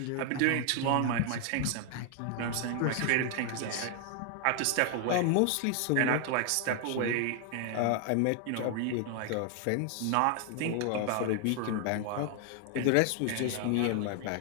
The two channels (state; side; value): different; both; correlation 0.00